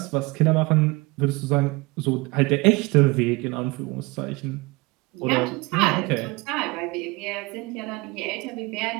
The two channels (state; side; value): quieter; left; 24.4 dB